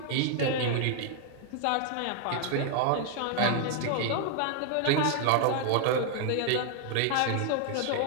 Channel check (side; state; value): both; different; correlation 0.00